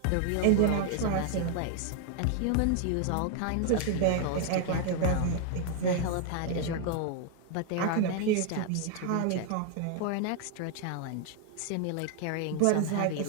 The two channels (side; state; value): both; different; correlation 0.00